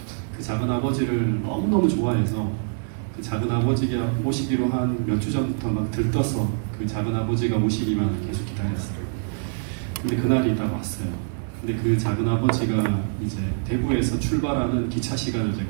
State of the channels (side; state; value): left; silent; digital silence